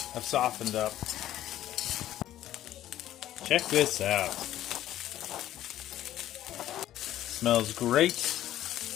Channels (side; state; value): right; quieter; 13.0 dB